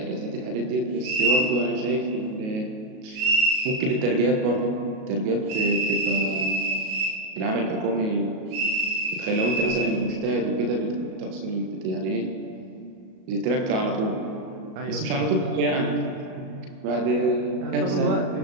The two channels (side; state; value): left; late; 37 ms